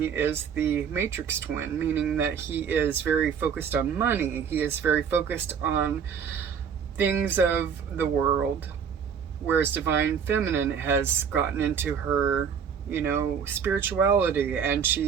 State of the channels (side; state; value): left; quieter; 7.2 dB